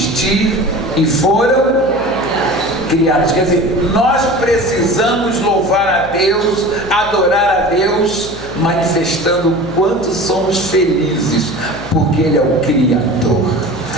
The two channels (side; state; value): left; noise; hum, 17 dB below the sound